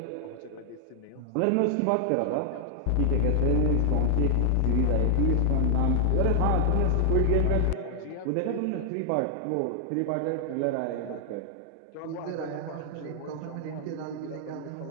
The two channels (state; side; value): different; both; correlation 0.00